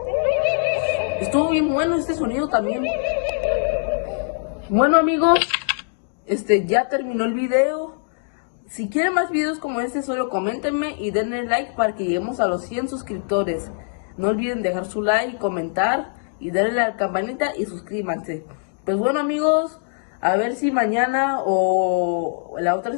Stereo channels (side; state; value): right; silent; digital silence